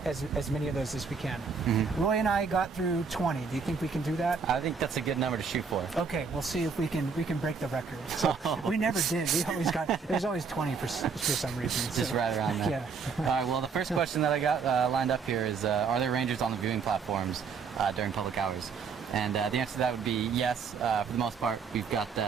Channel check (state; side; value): quieter; left; 5.5 dB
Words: as many of those as we can. Roy and I got through 20. Do you think we can do that? I think that's a good number to shoot for. Okay, we'll see if we can break the record. So we never did. We always got, there's always 20 for some reason. Just so, right around there. Yeah. All right, well, the first question that I got lined up here is, are there rangers on the viewing platforms during public hours? And the answer to that would be yes. For the most part, we've got